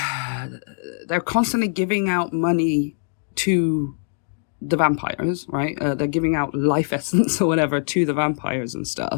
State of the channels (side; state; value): right; silent; digital silence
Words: constantly giving out money to the vampires, right? They're giving out life essence or whatever to the vampires and